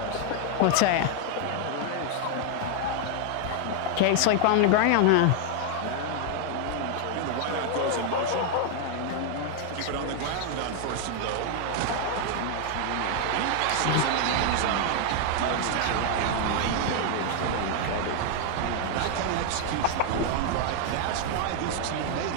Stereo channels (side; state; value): both; different; correlation 0.00